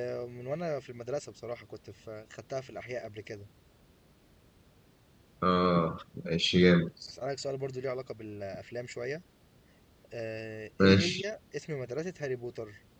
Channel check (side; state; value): both; identical; correlation 1.00